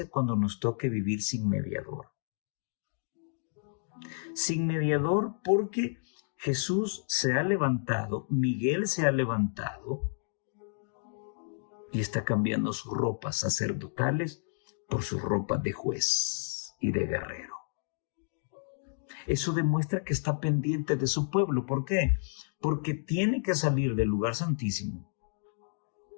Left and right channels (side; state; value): right; silent; digital silence